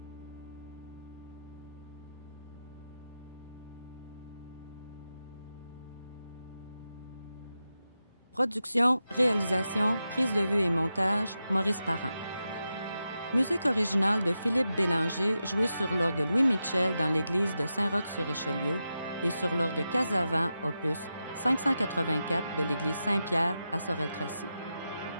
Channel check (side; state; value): both; inverted; correlation -0.90